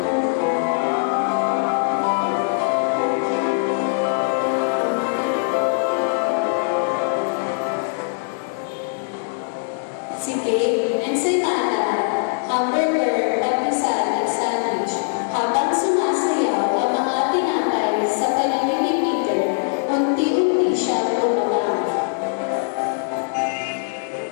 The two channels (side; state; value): right; silent; digital silence